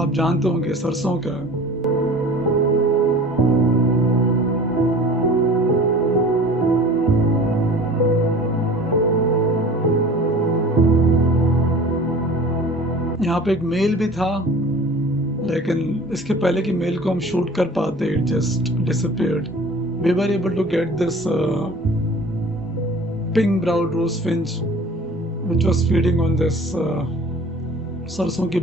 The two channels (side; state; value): both; normal; correlation 0.43